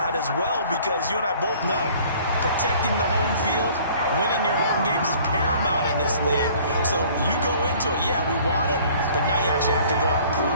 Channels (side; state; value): both; inverted; correlation -0.53